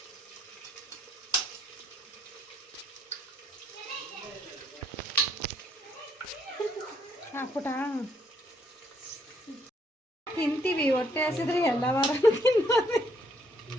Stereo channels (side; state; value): both; normal; correlation 0.70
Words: ಹಾಕ್ಬಿಟ್ಟ ತಿಂತೀವಿ, ಹೊಟ್ಟೆ ಹಸಿದ್ರೆ ಎಲ್ಲ ವಾರ ತಿನ್ನೋದು.